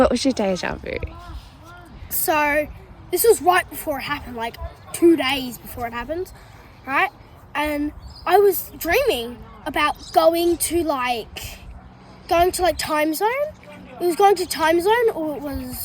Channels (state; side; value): identical; both; correlation 1.00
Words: was your deja vu? So this was right before it happened, like 2 days before it happened, right? And I was dreaming about going to Time Zone. It was going to Time Zone, or it